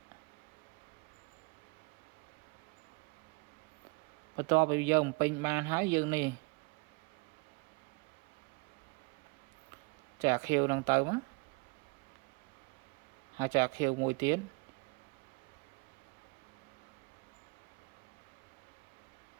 បន្ទាប់ពីយើងបំពេញបានហើយយើងនេះចាក់ខៀវនឹងទៅមកហើយចាក់ខៀវមួយទៀត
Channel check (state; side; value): quieter; left; 30.4 dB